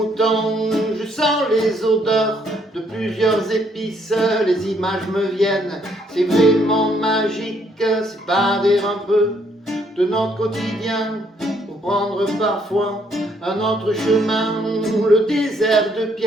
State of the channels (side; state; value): both; normal; correlation 0.69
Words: Je sens les odeurs de plusieurs épices, les images me viennent, c'est vraiment magique, s'évader un peu de notre quotidien pour prendre parfois un autre chemin. Le désert de